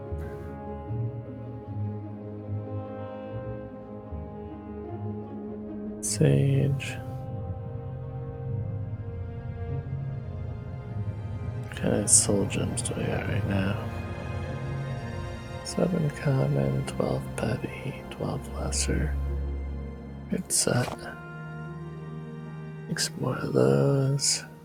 Sage. What kind of soul gems do I got right now? 7 common, 12 petty, 12 lesser. Good set. Make some more of those.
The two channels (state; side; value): identical; both; correlation 1.00